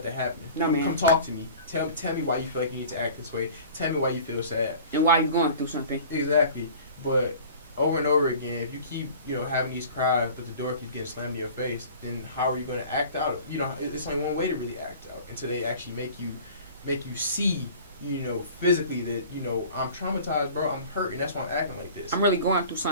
that happen. Come talk to me. Tell me why you feel like you need to act this way. Tell me why you feel sad and why you're going through something. Exactly, but over and over again, if you keep, you know, having these cries, but the door keeps getting slammed in your face, then how are you going to act out? You know, it's only one way to really act out, until they actually make you see, you know, physically that, you know, I'm traumatized, bro, I'm hurt, and that's why I'm acting like this. I'm really going through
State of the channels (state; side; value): inverted; both; correlation -0.44